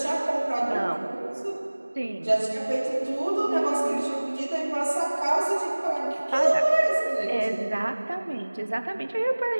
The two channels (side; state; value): both; inverted; correlation -1.00